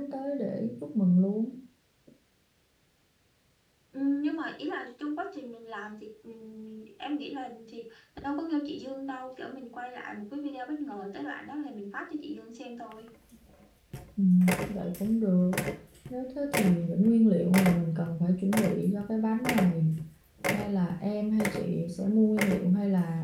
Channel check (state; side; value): identical; both; correlation 1.00